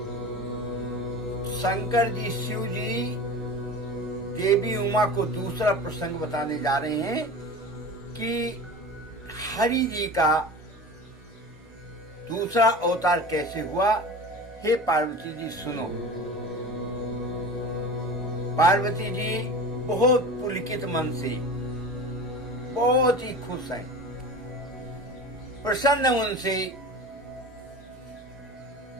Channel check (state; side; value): normal; both; correlation 0.34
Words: शंकर जी शिव जी देवी उमा को दूसरा प्रसंग बताने जा रहे हैं कि हरि जी का दूसरा अवतार कैसे हुआ। हे पार्वती जी सुनो। पार्वती जी बहुत पुलकित मन से, बहुत ही खुश हैं, प्रसन्न उनसे